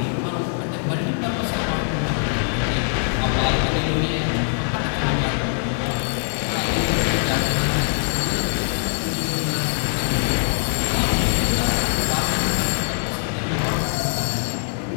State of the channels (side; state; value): right; silent; digital silence